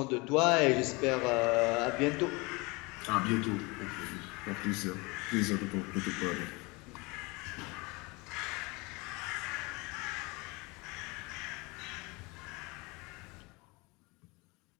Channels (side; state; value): right; quieter; 26.1 dB